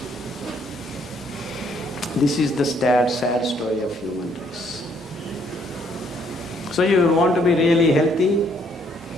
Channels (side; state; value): both; normal; correlation 0.67